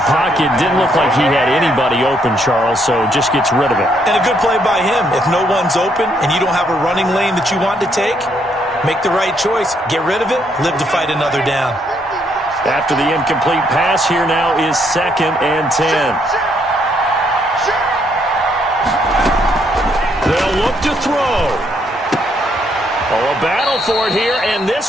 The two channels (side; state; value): both; normal; correlation 0.72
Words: Didn't look like he had anybody open, Charles, so just gets rid of it. And a good play by him. If no one's open and you don't have a running lane that you want to take, make the right choice. Get rid of it. Live to fight another down. After the incomplete pass, here now is 2nd and 10. They'll look to throw. Oh, a battle for it here, and